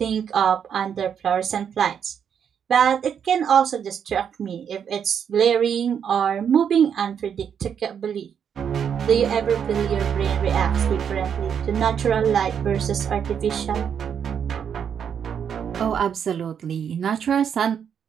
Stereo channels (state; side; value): quieter; left; 7.9 dB